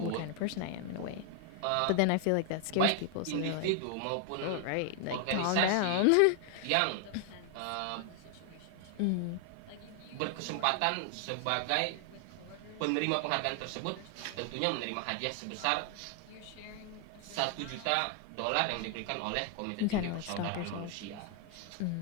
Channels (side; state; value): both; different; correlation 0.00